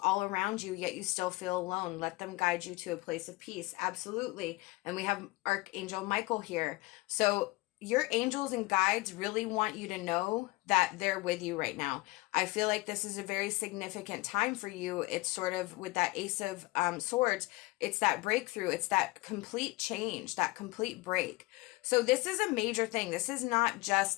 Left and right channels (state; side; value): quieter; right; 22.1 dB